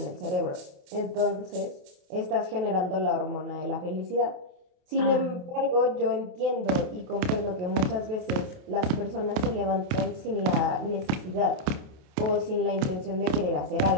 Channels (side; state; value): left; late; 28 ms